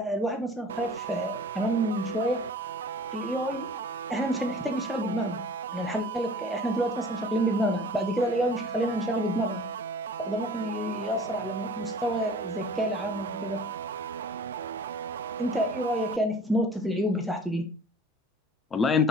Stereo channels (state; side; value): normal; both; correlation 0.46